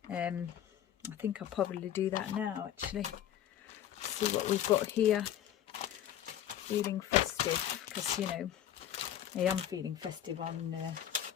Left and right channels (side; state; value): right; quieter; 10.9 dB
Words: I think I'll probably do that now actually. See what we've got here. Feeling festive, because, you know, I am feeling festive on the